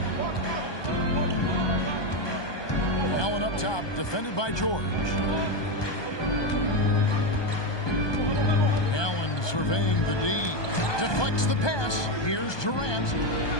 Allen up top, defended by George. Allen surveying the D. Deflects the pass. Here's Durant.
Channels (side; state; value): right; late; 1.2 ms